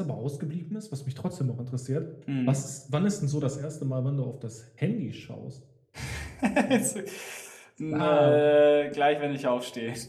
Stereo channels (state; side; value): identical; both; correlation 1.00